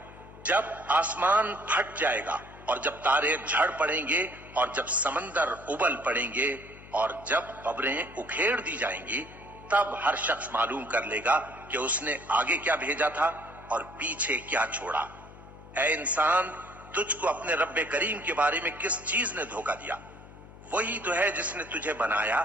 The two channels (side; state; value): left; noise; hum, 18 dB below the sound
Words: जब आसमान फट जाएगा और जब तारे झड़ पड़ेंगे और जब समंदर उबल पड़ेंगे और जब कब्रें उखेड़ दी जाएंगी, तब हर शख्स मालूम कर लेगा कि उसने आगे क्या भेजा था और पीछे क्या छोड़ा। ऐ इंसान, तुझको अपने रब्बे करीम के बारे में किस चीज ने धोखा दिया? वही तो है जिसने तुझे बनाया,